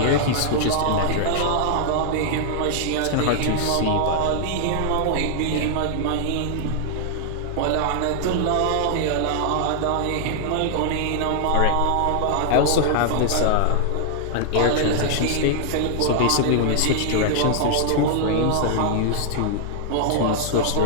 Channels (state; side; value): different; both; correlation -0.01